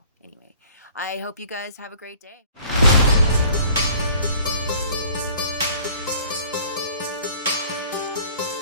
anyway, I hope you guys have a great day.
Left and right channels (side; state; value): both; inverted; correlation -0.52